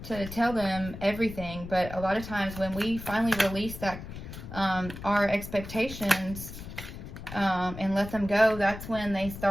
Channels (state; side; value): noise; left; rumble, 11 dB below the sound